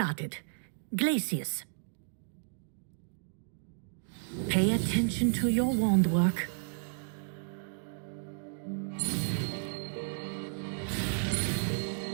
Glacius. Pay attention to your wand work.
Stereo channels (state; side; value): silent; left; digital silence